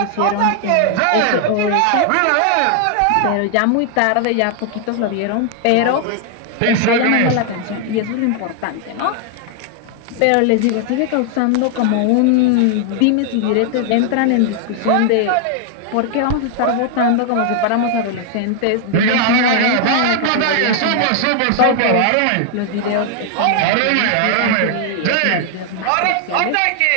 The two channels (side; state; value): both; different; correlation 0.00